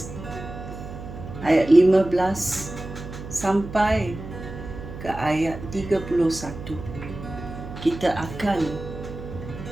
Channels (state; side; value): noise; right; hum, 11 dB below the sound